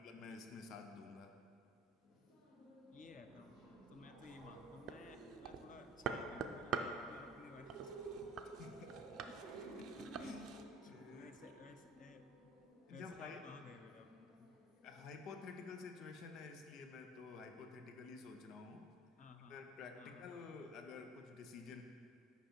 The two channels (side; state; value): both; normal; correlation 0.47